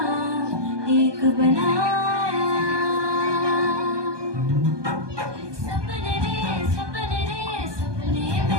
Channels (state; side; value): late; left; 1.2 ms